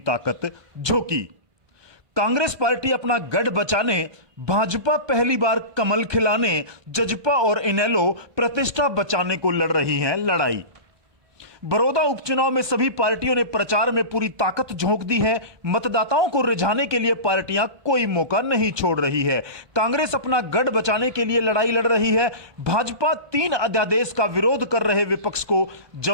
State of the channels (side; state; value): left; late; 1.2 ms